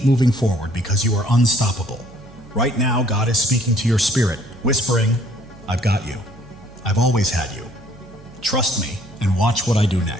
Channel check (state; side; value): noise; right; hum, 22 dB below the sound